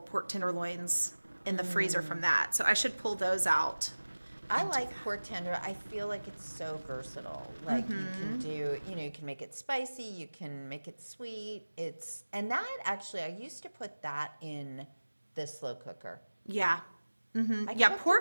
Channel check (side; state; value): both; inverted; correlation -1.00